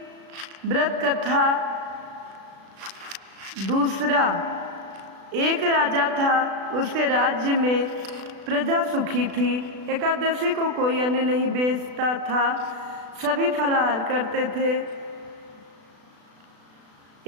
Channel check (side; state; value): left; late; 36 ms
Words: व्रत कथा दूसरा। एक राजा था, उसके राज्य में प्रजा सुखी थी। एकादशी को कोई अन्न नहीं बेचता था, सभी फलाहार करते थे।